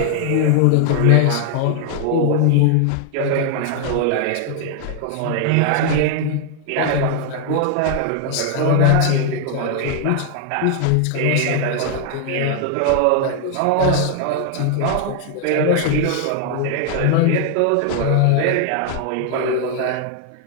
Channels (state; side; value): different; both; correlation 0.00